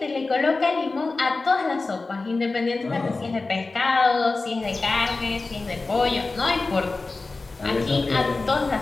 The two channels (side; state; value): right; quieter; 3.6 dB